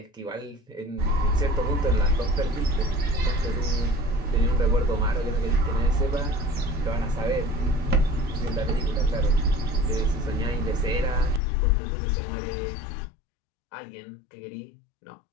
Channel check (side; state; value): right; drops out; at 11.4 s